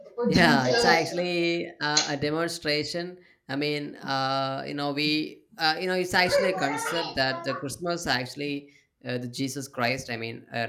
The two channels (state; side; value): identical; both; correlation 1.00